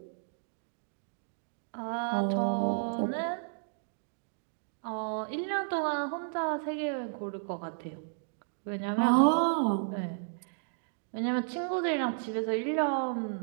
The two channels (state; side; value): silent; left; digital silence